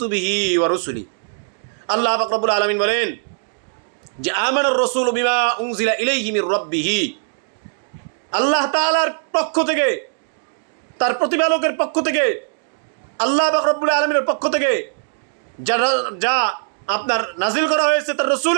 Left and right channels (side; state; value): left; silent; digital silence